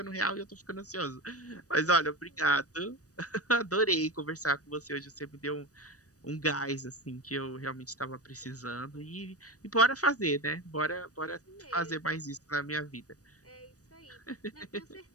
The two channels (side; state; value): right; late; 0.66 ms